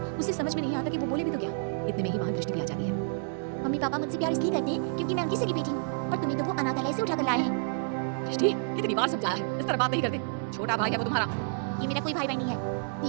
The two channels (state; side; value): silent; left; 58 dB below the other